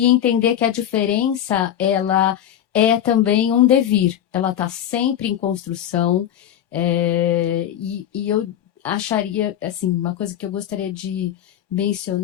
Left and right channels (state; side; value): quieter; right; 10.7 dB